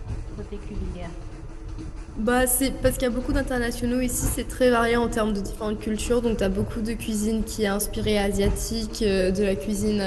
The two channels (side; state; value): both; identical; correlation 1.00